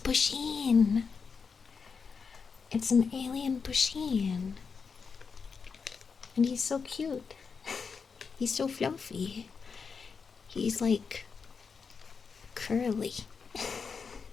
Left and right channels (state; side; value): quieter; right; 5.5 dB